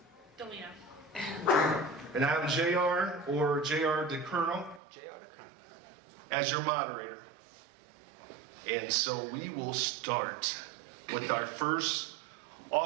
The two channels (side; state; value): left; drops out; at 4.8 s